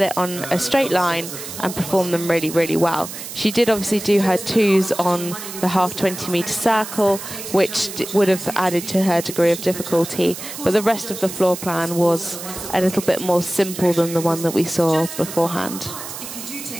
it on a straight line and perform them really, really well? She did obviously do her 2s on the half 20-meter circle, which would have added to her degree of difficulty, but the rest of the floor plan was a little bit more simple than the one that we saw beforehand. If you do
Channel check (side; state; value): right; noise; hiss, 10 dB below the sound